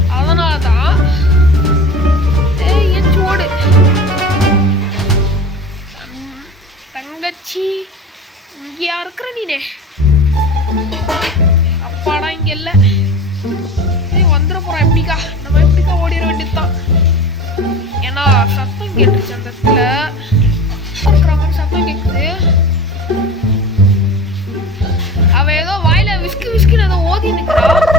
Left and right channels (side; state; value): both; normal; correlation 0.36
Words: அதனாலதான் எச்சு ஓடு. தங்கச்சி இங்கயா இருக்கிற நீனே? அப்பாடா இங்க இல்ல. வந்துட போறான். எப்படிக்கா நம்ம எப்படிக்கா ஓடிட வேண்டியதுதான். ஏன்னா சத்தம் கேட்டுருச்சு அந்த இடத்துல.